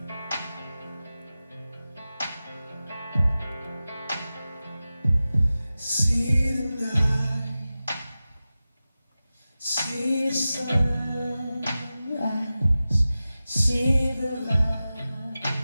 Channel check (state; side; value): inverted; both; correlation -0.95